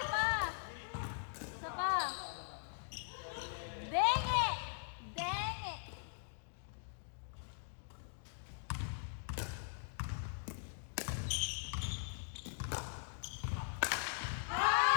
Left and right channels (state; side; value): silent; right; digital silence